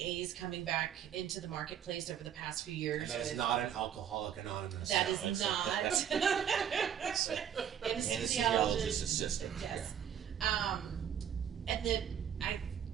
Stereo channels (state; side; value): quieter; left; 9.1 dB